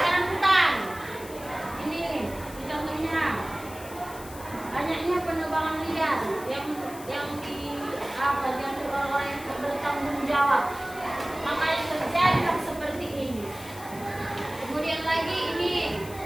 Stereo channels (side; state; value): left; noise; hiss, 16 dB below the sound